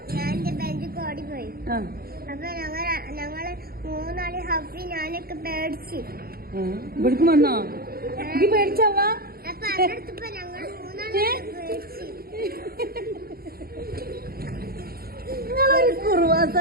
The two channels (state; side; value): late; left; 0.44 ms